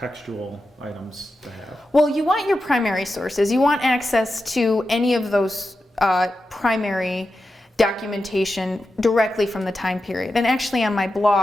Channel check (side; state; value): both; normal; correlation 0.90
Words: items to have? Well, you want your primary sources. You want access to any of those primary documentation directly from the time period. And actually on my